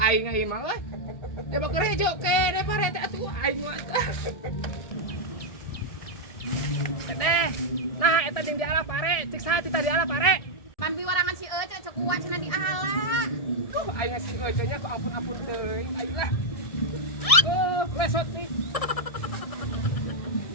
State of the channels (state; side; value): late; right; 1.7 ms